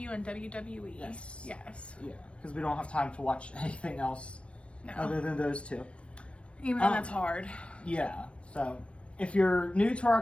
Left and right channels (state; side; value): late; right; 0.060 ms